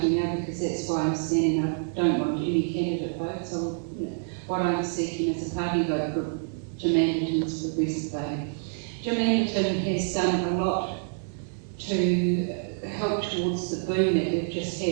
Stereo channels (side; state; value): left; silent; digital silence